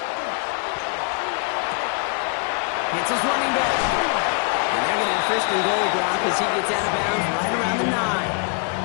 Hits his running back. And they're going to have 1st and goal, Brock, as he gets out of bounds right around the 9.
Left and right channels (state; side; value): quieter; right; 36.2 dB